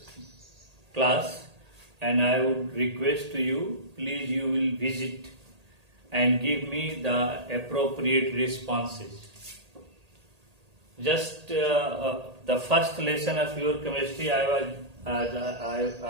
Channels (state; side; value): late; left; 1.8 ms